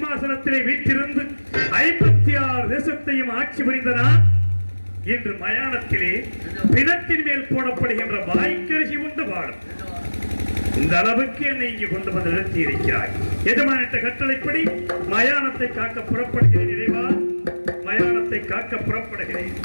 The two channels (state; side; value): inverted; both; correlation -1.00